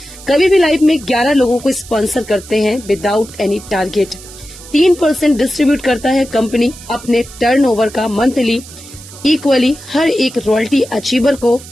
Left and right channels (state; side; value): noise; right; hiss, 17 dB below the sound